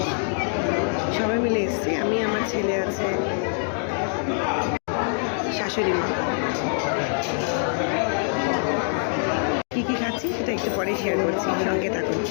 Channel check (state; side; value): silent; right; 62 dB below the other